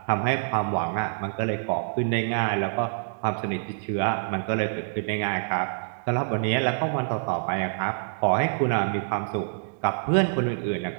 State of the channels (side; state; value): left; silent; digital silence